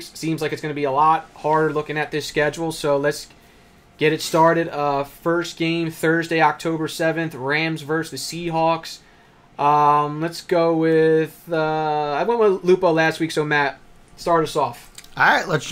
seems like it's going to be a lot harder looking at this schedule. So let's get it started. First game, Thursday, October 7th, Rams versus the Seahawks. Let's go with... I went with Lupo last week, so Matt, start us off. All right, let's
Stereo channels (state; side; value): identical; both; correlation 1.00